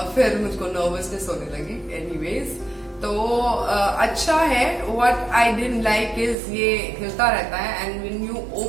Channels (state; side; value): drops out; left; at 6.4 s